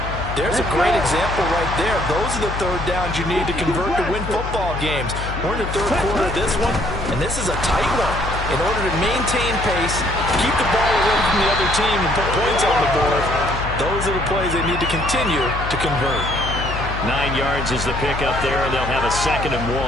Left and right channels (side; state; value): left; noise; hum, 6 dB below the sound